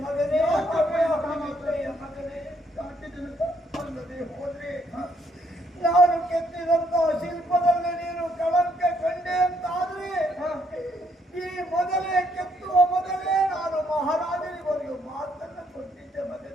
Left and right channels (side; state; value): both; normal; correlation 0.70